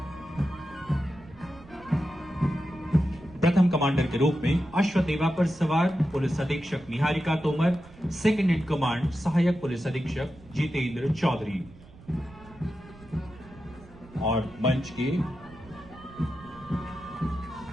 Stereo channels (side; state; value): right; noise; rumble, 21 dB below the sound